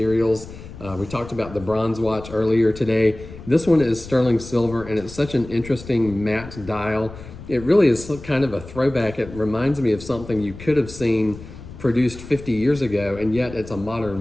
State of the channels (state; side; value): noise; left; rumble, 15 dB below the sound